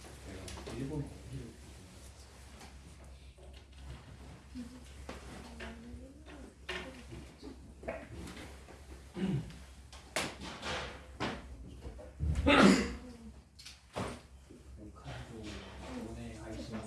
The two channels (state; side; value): identical; both; correlation 1.00